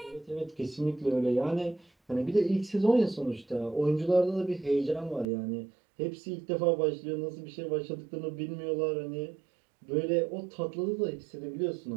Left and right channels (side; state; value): left; drops out; at 5.2 s